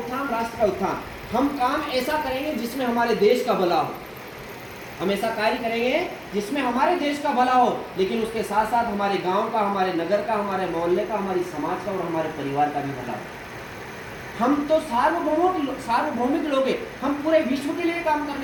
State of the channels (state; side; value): identical; both; correlation 1.00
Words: राष्ट्र का उत्थान। हम काम ऐसा करेंगे जिसमें हमारे देश का भला हो, हम ऐसा कार्य करेंगे जिसमें हमारे देश का भला हो, लेकिन उसके साथ साथ हमारे गांव का, हमारे नगर का, हमारे मोहल्ले का, हमारी समाज का और हमारे परिवार का भी भला हो। हम तो सार्वभौमिक लोग हैं, हम पूरे विश्व के लिए काम